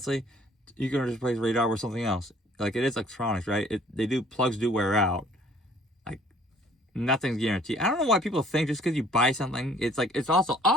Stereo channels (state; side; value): normal; both; correlation 0.57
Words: you can just replace radar with something else. Like it is electronics, right? Plugs do wear out. Like nothing's guaranteed. I don't know why people think just because you buy something, it's like it's also